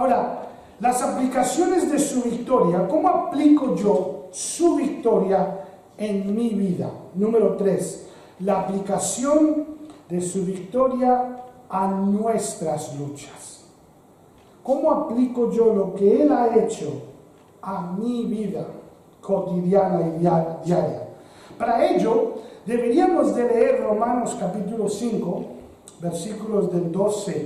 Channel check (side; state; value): both; identical; correlation 1.00